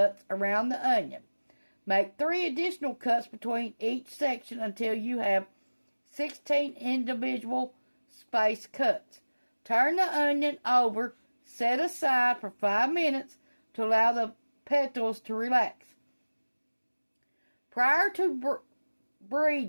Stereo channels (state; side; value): inverted; both; correlation -1.00